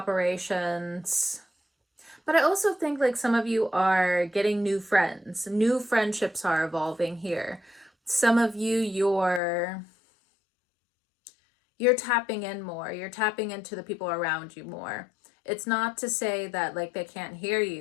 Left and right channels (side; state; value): right; drops out; at 9.4 s